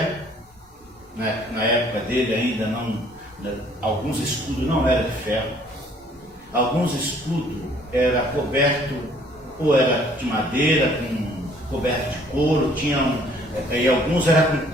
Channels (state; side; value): normal; both; correlation 0.59